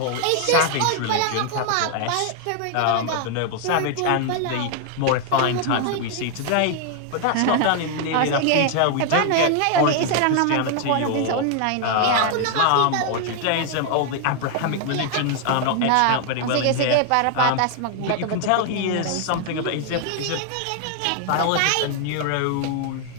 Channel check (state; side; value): different; both; correlation 0.00